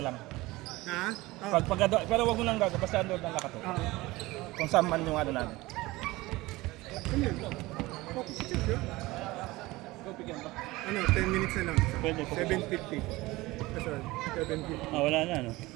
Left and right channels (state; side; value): quieter; left; 20.2 dB